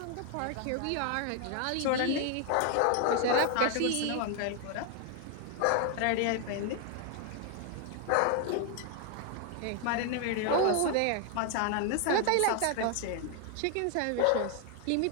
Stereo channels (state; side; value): different; both; correlation 0.00